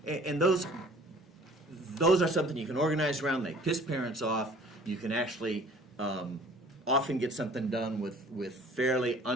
those are something you can organize around. They piss parents off. You can actually often get something done with fairly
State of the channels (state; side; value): normal; both; correlation 0.51